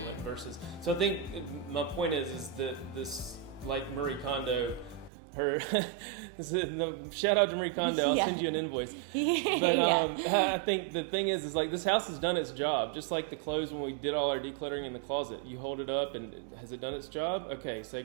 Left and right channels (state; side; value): drops out; left; at 5.1 s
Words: Like so I think my point is that this, like Marie Kondo, shout out to Marie Kondo, I'll send you an invoice. But I think the thing is like, this house has done its job. Just like the clothes, when we did all our decluttering in the closet, you hold it up and has it done its job? Okay, say